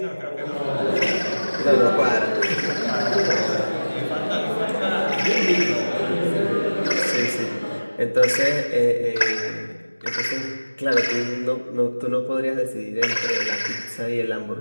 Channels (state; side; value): inverted; both; correlation -1.00